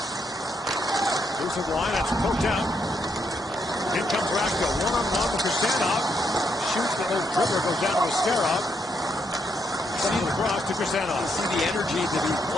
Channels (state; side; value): normal; both; correlation 0.77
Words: Loose of line, that's poked out. In comes Raska, one-on-one with Kristanov. Shoots, the little dribbler goes down to Askarov. Sends it across to Kristanov. You see the energy that he